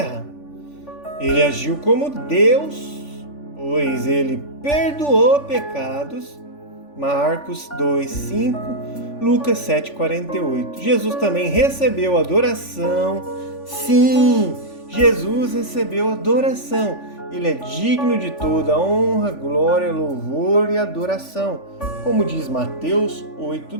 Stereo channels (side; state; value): right; late; 3.5 ms